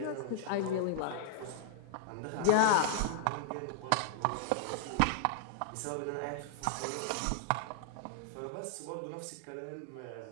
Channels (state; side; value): different; both; correlation -0.01